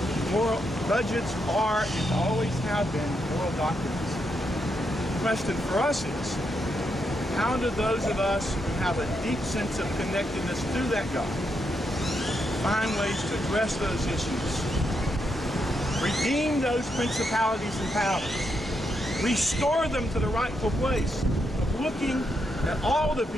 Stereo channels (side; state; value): both; normal; correlation 0.81